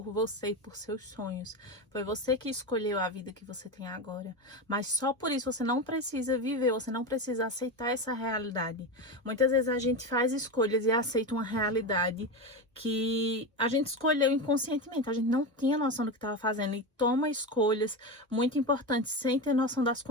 você e por seus sonhos. Foi você que escolheu a vida que você tem agora. Mas só por isso você não precisa viver, você não precisa aceitar essa realidade. Muitas vezes a gente faz escolhas e aceita uma realidade que a gente escolheu inconscientemente. A gente não tinha noção do que estava fazendo e toma escolhas muito importantes sem ter noção das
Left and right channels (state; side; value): normal; both; correlation 0.19